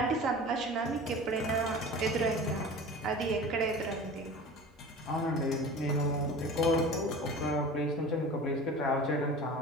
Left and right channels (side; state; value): both; normal; correlation 0.37